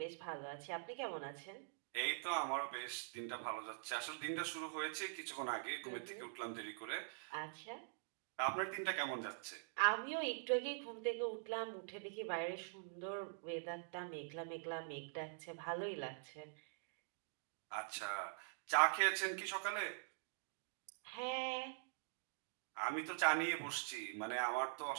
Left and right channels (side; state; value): left; silent; digital silence